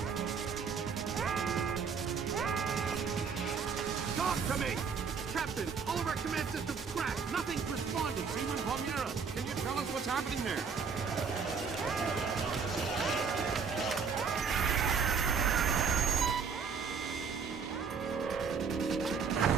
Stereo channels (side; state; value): left; quieter; 5.9 dB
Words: Talk to me! Captain, all of our command systems crashed. Nothing's responding. Seaman Palmieri, can you tell us what's happening there?